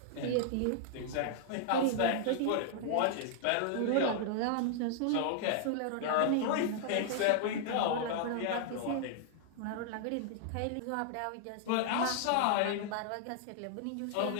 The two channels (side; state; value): both; different; correlation -0.01